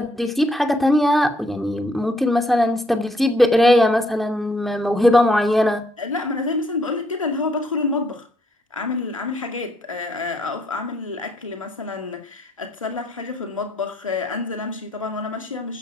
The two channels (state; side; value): normal; both; correlation 0.70